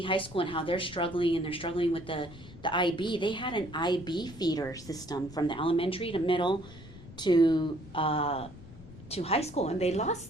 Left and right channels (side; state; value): left; noise; rumble, 17 dB below the sound